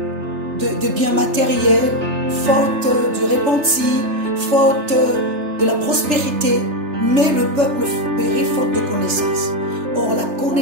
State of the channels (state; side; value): late; left; 3.3 ms